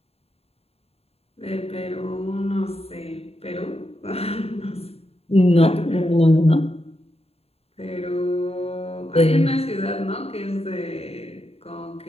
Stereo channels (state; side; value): late; right; 0.29 ms